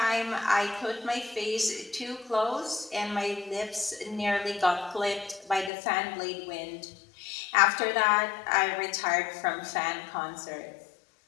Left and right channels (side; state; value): right; drops out; at 5.7 s